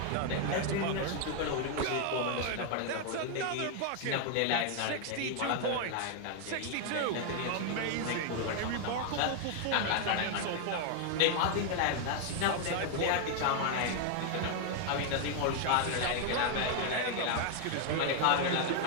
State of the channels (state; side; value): different; both; correlation 0.00